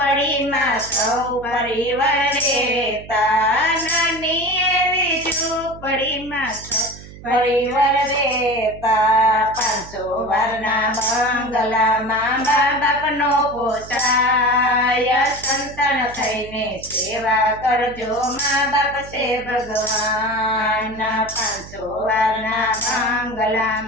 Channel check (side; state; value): right; noise; hum, 17 dB below the sound